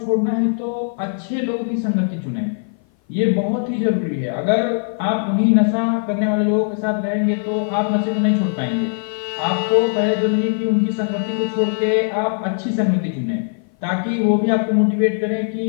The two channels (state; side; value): silent; right; 56 dB below the other